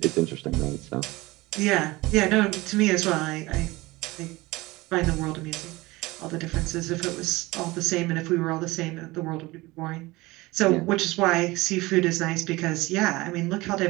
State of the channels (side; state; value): left; quieter; 21.1 dB